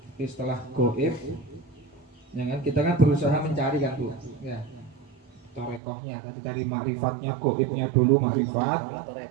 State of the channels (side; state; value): left; drops out; at 5.8 s